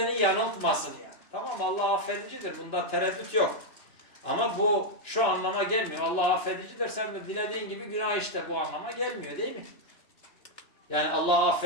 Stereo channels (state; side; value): late; right; 2.9 ms